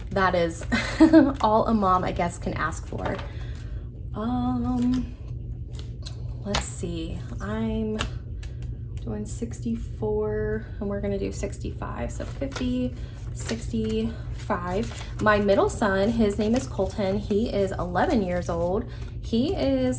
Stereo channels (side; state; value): both; identical; correlation 1.00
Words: that is all a mom, I guess, can ask for. Let's see. I'm doing 64 and we're gonna do 65. So 50, 65. My middle son, his name is Colton. He is 11 years old. He